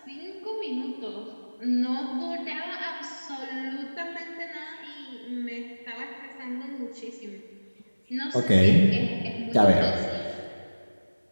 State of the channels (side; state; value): both; inverted; correlation -1.00